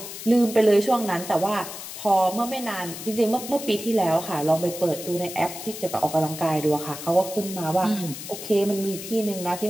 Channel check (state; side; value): noise; left; hiss, 10 dB below the sound